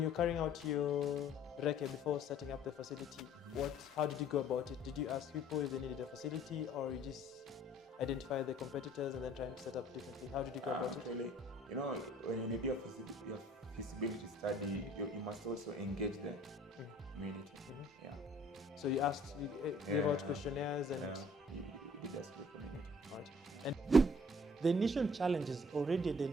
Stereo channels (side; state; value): both; normal; correlation 0.56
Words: carrying out your recce before setting up the facility, how did you go about it? Did you ask people if they needed a facility, or you just identify the competitors and then try and set up differently? How did you go about it? Actually, when you do your feasibility study, you must also engage the community. Yeah. So you gave out questionnaires and you did ask the community. right. And the initial challenges already